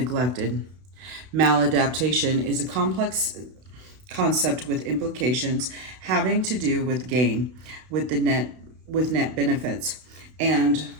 Maladaptation is a complex concept with implications having to do with gain, with net benefits, and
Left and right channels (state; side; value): late; left; 32 ms